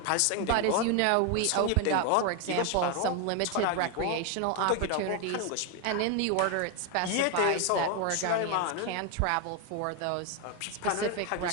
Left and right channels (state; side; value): different; both; correlation 0.01